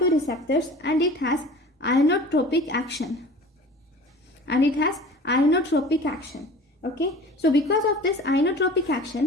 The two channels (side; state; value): both; normal; correlation 0.41